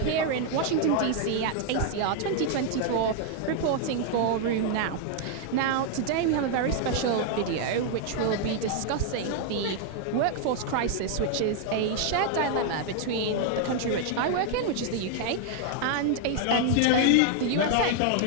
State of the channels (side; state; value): both; different; correlation 0.00